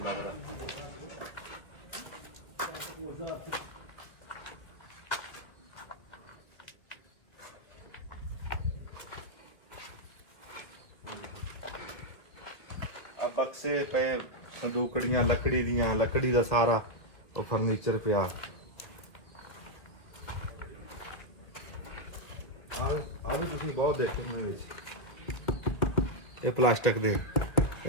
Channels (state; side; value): late; right; 1.8 ms